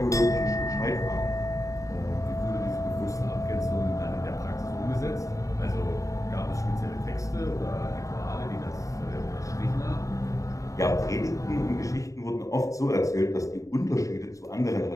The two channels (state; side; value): late; right; 0.16 ms